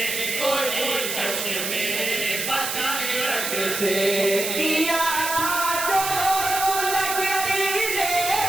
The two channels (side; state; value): right; noise; hiss, 3 dB below the sound